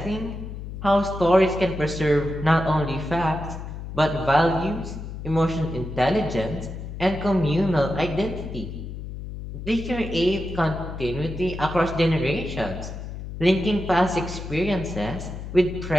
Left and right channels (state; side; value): noise; left; hum, 9 dB below the sound